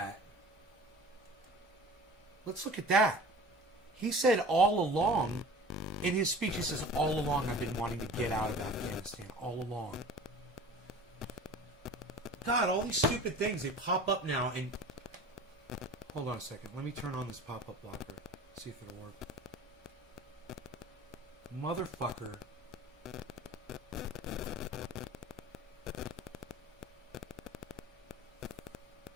Let's look at that. He said all along, in his speech, he says, all along I've been wanting to get out of Afghanistan. All along. God, all these stupid things, they pop up now and... Hold on a second. Let me turn on this pop-up blocker. See if it'll work. Motherfucker.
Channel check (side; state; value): both; normal; correlation 0.41